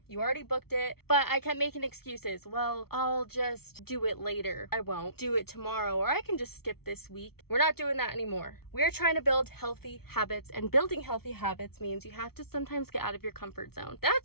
You already booked it. But I kept making excuses. Well, I'll just do it later. I won't do it tomorrow, or I can just skip this week. We're not doing that anymore. We're trying to build healthy habits, and building healthy habits means you have to sometimes get out of your comfort zone.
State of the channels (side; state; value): right; late; 0.95 ms